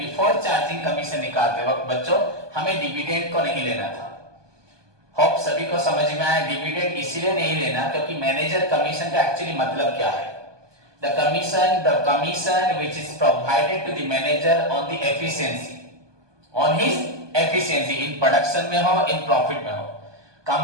चार्जिंग कमीशन निकालते वक्त बच्चों हमें डिविडेंड को नहीं लेना था। होप सभी को समझ में आया। डिविडेंड इसीलिए नहीं लेना क्योंकि मैनेजर कमीशन का एक्चुअली मतलब क्या है। The commission which is provided to the manager on the efficiency, on his efficiency in production में हो, in profit में हो,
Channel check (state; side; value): late; left; 1.2 ms